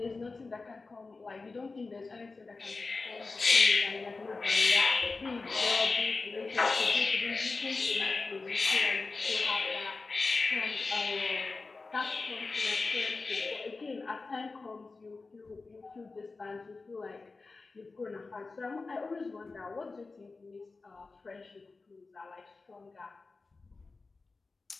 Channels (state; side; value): quieter; right; 3.9 dB